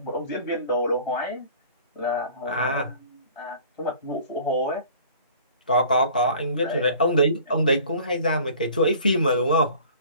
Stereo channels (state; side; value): inverted; both; correlation -0.48